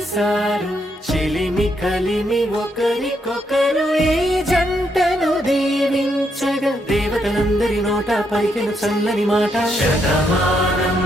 చెలిమి కలిమి ఒకరికొకరు ఈ జంటను దీవించగా దేవతలందరి నోట పలికిన చల్లని మాట శతమానం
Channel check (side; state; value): both; normal; correlation 0.77